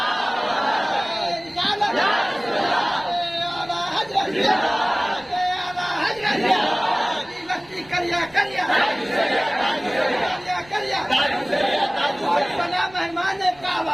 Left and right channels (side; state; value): right; noise; rumble, 26 dB below the sound